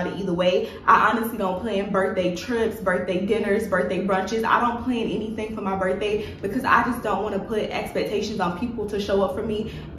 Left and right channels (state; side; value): identical; both; correlation 1.00